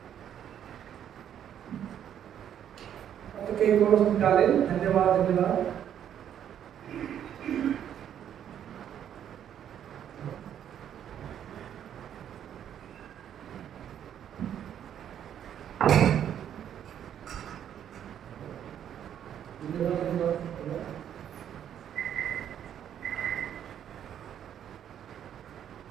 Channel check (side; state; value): left; quieter; 9.7 dB